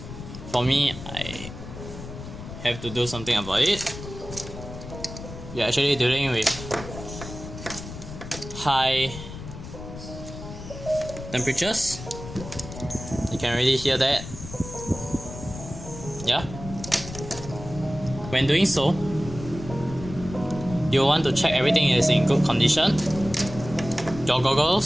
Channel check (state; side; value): noise; left; rumble, 11 dB below the sound